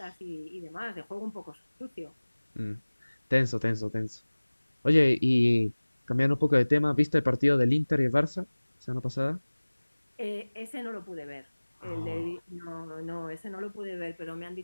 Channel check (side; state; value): both; inverted; correlation -1.00